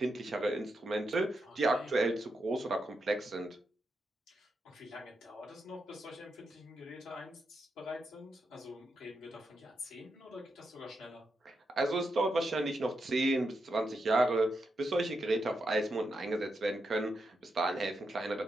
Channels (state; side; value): normal; both; correlation 0.85